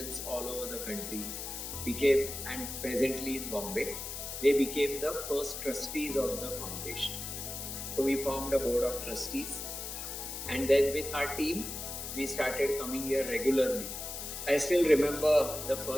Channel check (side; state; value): left; noise; hiss, 7 dB below the sound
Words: all over the country, became, and presently in Bombay, they became the first trustees of the foundation. So we formed a board of trustees, and then with our team, we started coming here regularly. I still remember the